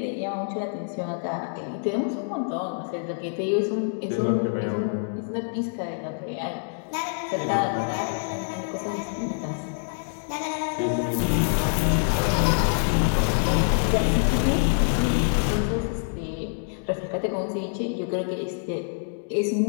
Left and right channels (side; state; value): right; silent; digital silence